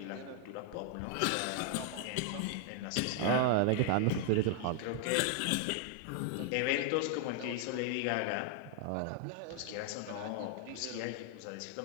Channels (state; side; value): different; both; correlation 0.00